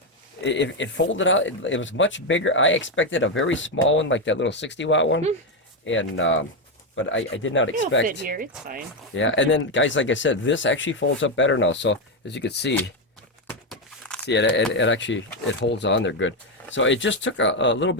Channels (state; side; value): normal; both; correlation 0.06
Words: it folded out. It was much bigger. I expected a very small one, like that little 60-watt one, and but I did not expect. It'll fit here. It's fine. Yeah, and then guys, like I said, this actually folds up better now. So as you can see. See, it actually holds on there good. So it just took a little